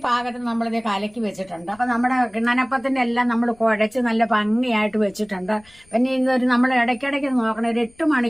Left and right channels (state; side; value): noise; left; rumble, 29 dB below the sound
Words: പാകത്തിന് നമ്മളിത് കലക്കി വെച്ചിട്ടുണ്ട്. അപ്പൊ നമ്മുടെ കിണ്ണനപ്പത്തിന്റെ എല്ലാം നമ്മൾ കുഴച്ച് നല്ല ഭംഗിയായിട്ട് വെച്ചിട്ടുണ്ട്. പിന്നെ ഇതൊരു നമ്മൾ ഇടയ്ക്കിടയ്ക്ക് നോക്കണം, ഒരു 8